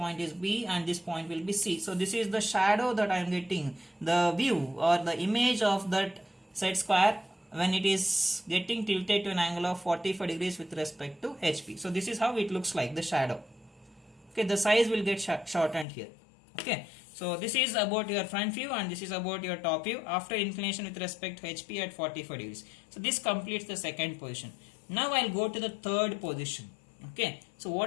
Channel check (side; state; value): right; drops out; at 15.9 s